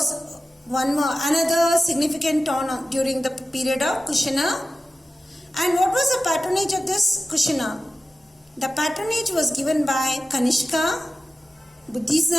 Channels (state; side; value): normal; both; correlation 0.94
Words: another significant town during the period of Kushana. And what was the patronage of this Kushana? The patronage was given by Kanishka,